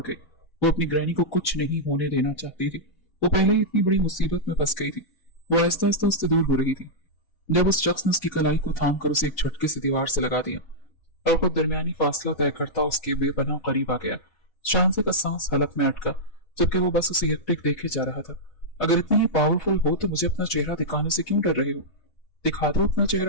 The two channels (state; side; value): late; right; 4.0 ms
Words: गई। वो अपनी ग्रैनी को कुछ नहीं होने देना चाहती थी। वो पहले ही इतनी बड़ी मुसीबत में फंस गई थी। वो आहिस्ता आहिस्ता उससे दूर हो रही थी जब उस शख्स ने उसकी कलाई को थाम कर उसे एक झटके से दीवार से लगा दिया और खुद दरमियानी फासला तय करता उसके बेपनाह करीब आ गया। शानसे का सांस हलक में अटका जबकि वो बस उसे एकटिक देखे जा रहा था। अगर इतनी ही पावरफुल हो तो मुझे अपना चेहरा दिखाने से क्यों डर रहे हो? दिखा दो अपना